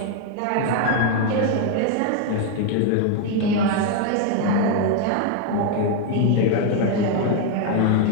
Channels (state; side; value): different; both; correlation 0.01